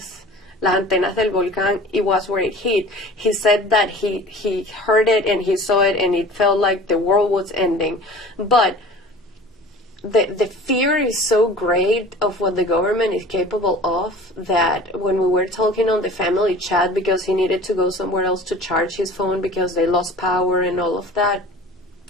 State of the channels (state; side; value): normal; both; correlation 0.42